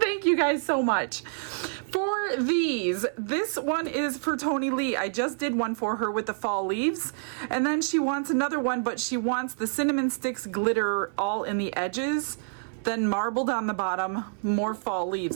you guys so much. For these, this one is for Tony Lee. I just did one for her with the fall leaves, and then she wants another one, but she wants the cinnamon sticks glitter all in the edges, then marbled on the bottom, more fall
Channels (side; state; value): left; silent; 60 dB below the other